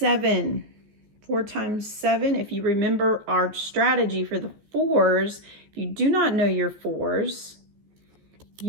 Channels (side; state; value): left; late; 14 ms